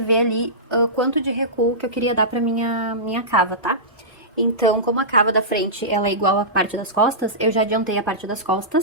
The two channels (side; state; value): both; normal; correlation -0.18